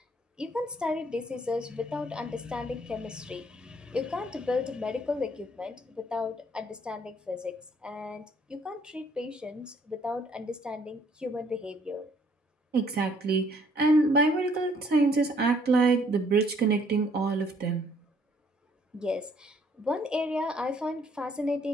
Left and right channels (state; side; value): normal; both; correlation 0.64